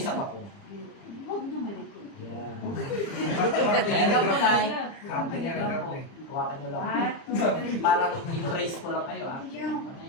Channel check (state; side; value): late; right; 30 ms